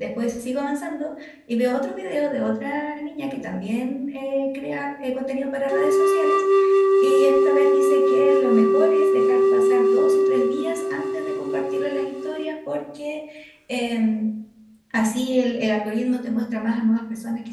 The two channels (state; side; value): identical; both; correlation 1.00